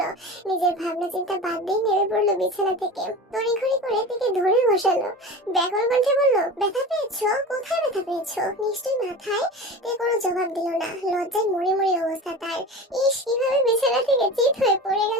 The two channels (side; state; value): both; normal; correlation 0.32